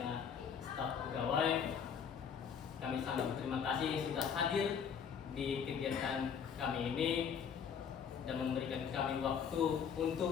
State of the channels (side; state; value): right; quieter; 7.2 dB